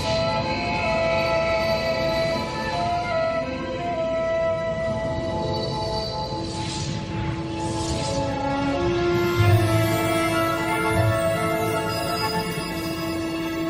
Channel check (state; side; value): identical; both; correlation 1.00